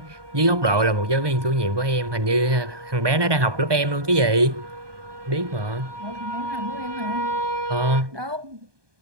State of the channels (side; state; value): left; late; 1.2 ms